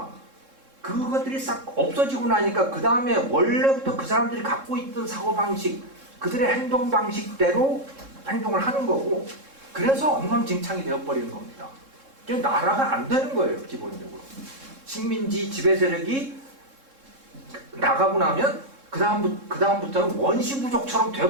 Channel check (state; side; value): late; left; 3.7 ms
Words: 그것들이 싹 없어지고 나니까 그 다음에 원래부터 그 사람들이 갖고 있던 사고방식, 그들의 행동방식대로 행동을 하는 거고, 그 그래서 엉망진창이 되어버리는 겁니다. 그러니까 나라가 안 되는 거예요, 기본적으로. 식민지 지배 세력이 나가고 나면 그다음부터는 원시부족처럼